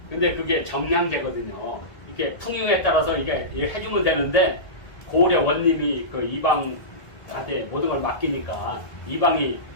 근데 그게 정량제거든요. 이게 풍요에 따라서 이게 해주면 되는데 고을의 원님이 그 이방한테 모든 걸 맡기니까 이방이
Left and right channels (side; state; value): right; late; 1.6 ms